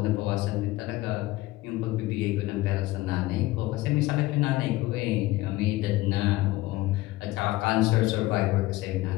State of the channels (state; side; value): quieter; right; 18.4 dB